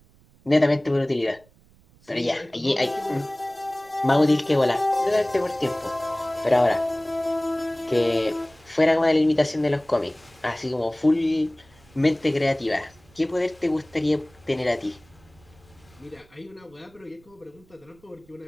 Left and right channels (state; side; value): noise; right; rumble, 29 dB below the sound